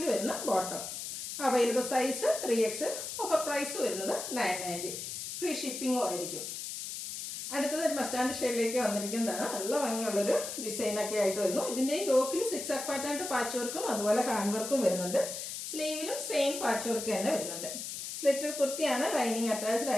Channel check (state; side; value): noise; left; hiss, 6 dB below the sound